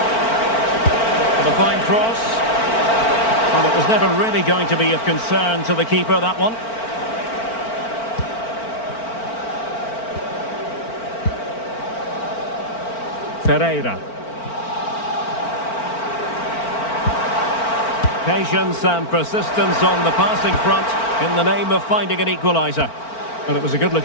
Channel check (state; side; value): late; right; 4.4 ms